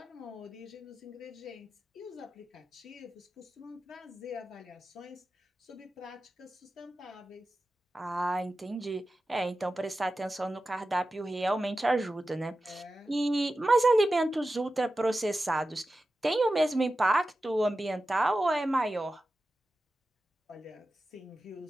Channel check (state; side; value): normal; both; correlation 0.93